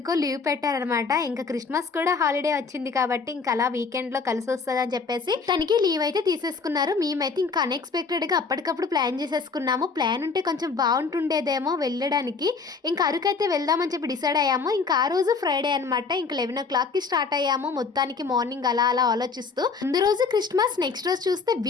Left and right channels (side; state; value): right; quieter; 4.8 dB